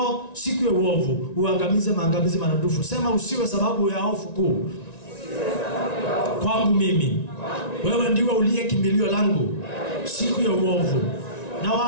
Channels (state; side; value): late; right; 1.9 ms